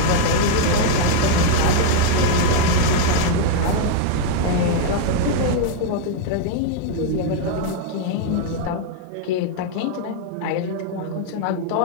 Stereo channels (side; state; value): both; different; correlation 0.00